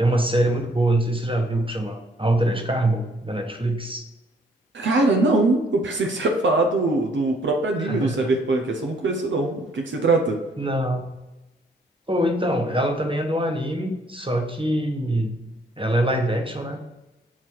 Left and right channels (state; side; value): normal; both; correlation 0.65